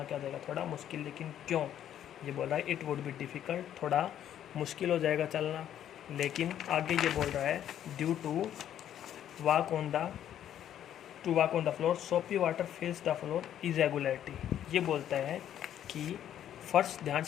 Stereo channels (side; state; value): right; quieter; 10.6 dB